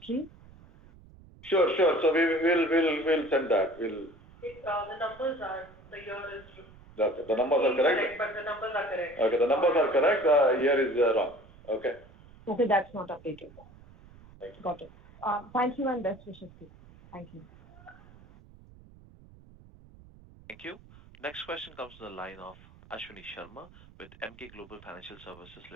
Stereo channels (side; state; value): right; noise; rumble, 23 dB below the sound